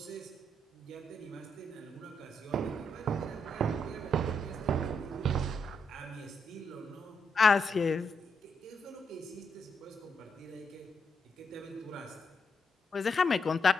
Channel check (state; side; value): normal; both; correlation 0.79